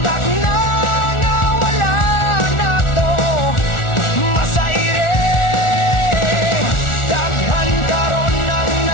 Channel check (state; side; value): late; right; 1.4 ms